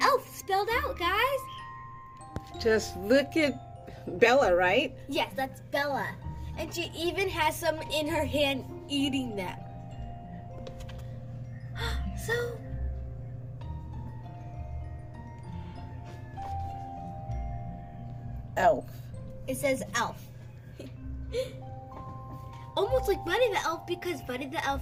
elf spelled out, guys. Just look at Bella, right? Yes, that's Bella. And she even has some in her hand eating them. So, Elf. it says elf. Almost like Buddy the Elf because Buddy the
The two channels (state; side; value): identical; both; correlation 1.00